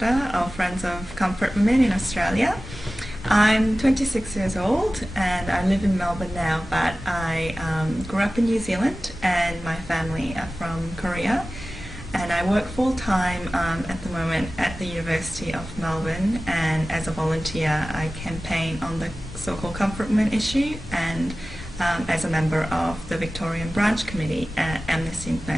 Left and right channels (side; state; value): both; normal; correlation 0.96